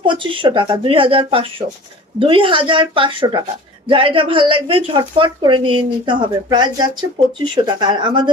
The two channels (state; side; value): normal; both; correlation 0.42